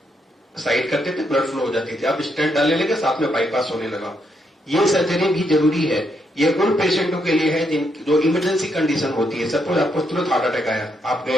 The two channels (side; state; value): both; normal; correlation 0.77